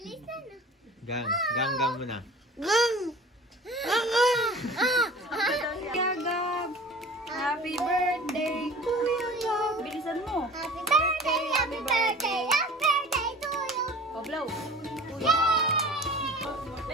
Gang mo na. Gagab. Happy birthday to you. Bilisan mo. Happy birthday, happy birthday, happy birthday to you. Oh, blow.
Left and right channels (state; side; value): normal; both; correlation 0.41